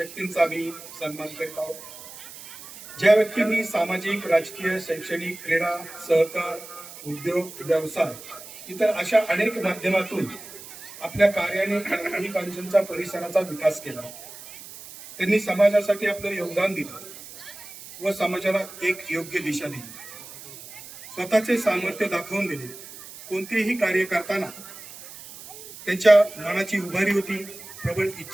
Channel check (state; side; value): noise; right; hiss, 15 dB below the sound